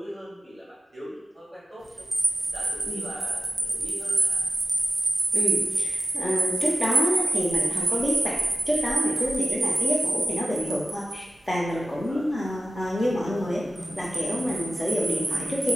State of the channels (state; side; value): normal; both; correlation 0.94